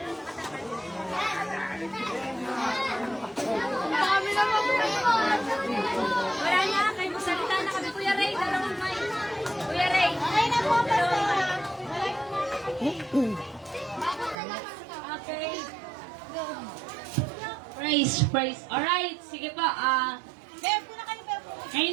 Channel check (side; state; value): left; drops out; at 14.4 s